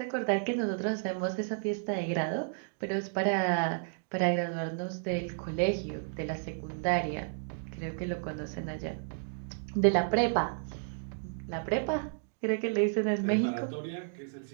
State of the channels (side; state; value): left; silent; digital silence